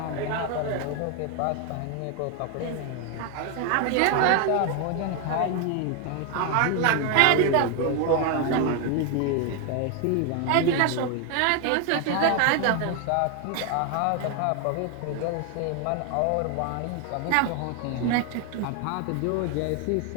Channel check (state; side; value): different; both; correlation 0.01